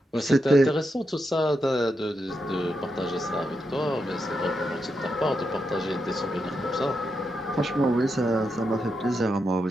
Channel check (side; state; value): both; normal; correlation 0.85